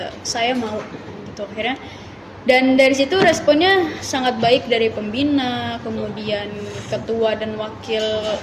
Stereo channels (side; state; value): both; identical; correlation 1.00